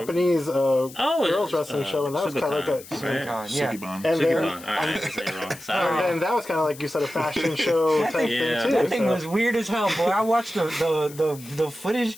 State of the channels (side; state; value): left; noise; hiss, 18 dB below the sound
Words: girls wrestling show, and that was kind of like a Sukiban. And that was kind of like you said, a fashion show type thing too. That thing was weird as hell, boy. I watched the footage.